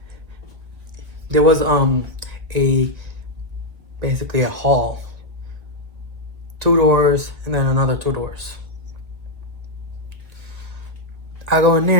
there was basically a hall, 2 doors and then another 2 doors. I go in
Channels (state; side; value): late; left; 1.7 ms